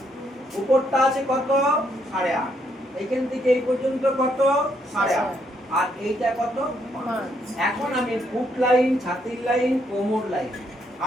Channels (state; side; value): normal; both; correlation 0.73